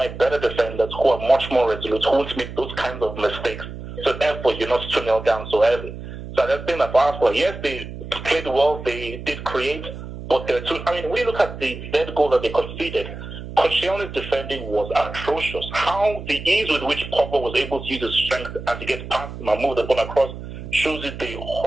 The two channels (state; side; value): noise; right; hum, 11 dB below the sound